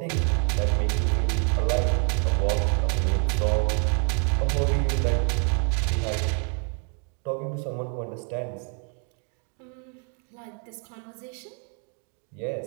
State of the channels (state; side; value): quieter; left; 38.2 dB